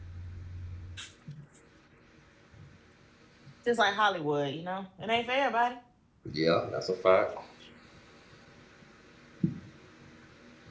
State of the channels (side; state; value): both; identical; correlation 1.00